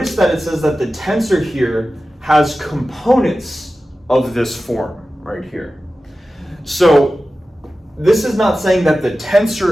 that it says that the tensor here has components of this form right here. So this is not saying that the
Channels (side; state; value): both; normal; correlation 0.95